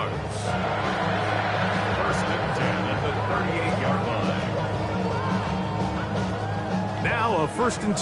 First and 10 at the 38-yard line. Now a 1st and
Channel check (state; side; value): identical; both; correlation 1.00